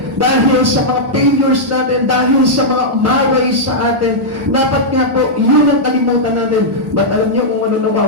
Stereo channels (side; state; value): both; normal; correlation -0.08